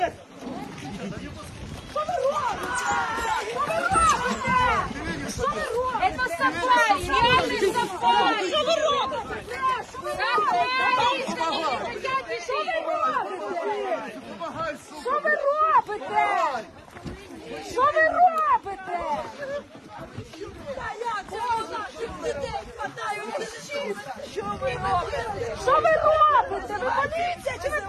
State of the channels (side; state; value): both; identical; correlation 1.00